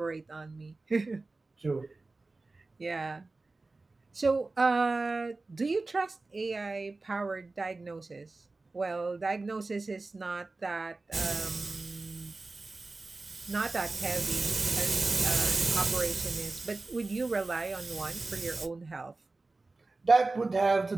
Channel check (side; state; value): left; quieter; 3.4 dB